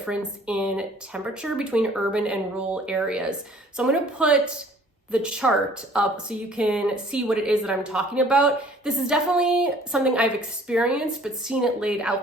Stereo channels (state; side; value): normal; both; correlation 0.54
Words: in temperature between urban and rural areas. So I'm going to put the chart up so you can see what it is that I'm talking about. This is definitely something I've experienced, but seeing it laid